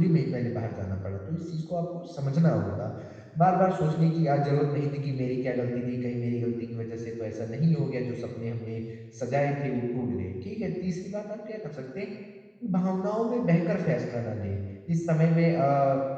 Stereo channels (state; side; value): identical; both; correlation 1.00